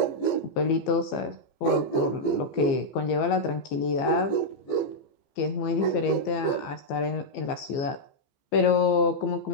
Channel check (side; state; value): right; late; 15 ms